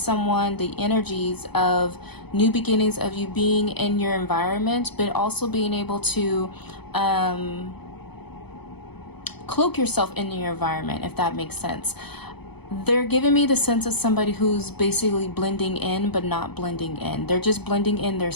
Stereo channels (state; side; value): late; right; 0.98 ms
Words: someone, the energies of new beginnings, of you being in your environment, but also being able to cloak yourself in your environment, if that makes sense. They're giving me the sense of somebody who's basically blending in, but not blending in. They're just blending in their